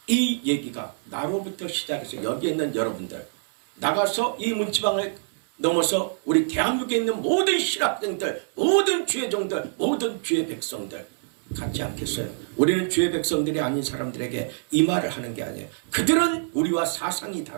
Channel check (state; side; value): silent; left; digital silence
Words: 이 얘기가 나로부터 시작해서 여기에 있는 여러분들 나가서 이 문지방을 넘어서 우리 대한민국에 있는 모든 신학생들, 모든 주의 종들, 모든 주의 백성들 같지 않겠어요? 우리는 주의 백성들이 아닌 사람들에게 이 말을 하는 게 아니에요. 그들은 우리와 사상이